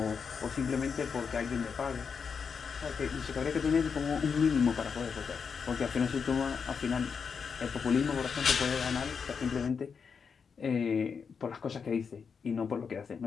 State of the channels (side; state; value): right; quieter; 6.0 dB